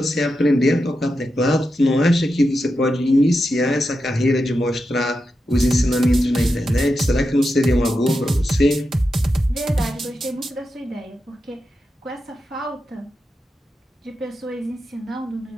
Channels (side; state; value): both; normal; correlation 0.88